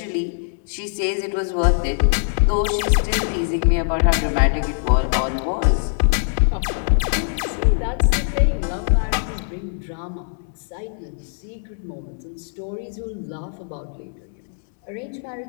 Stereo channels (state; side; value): silent; right; digital silence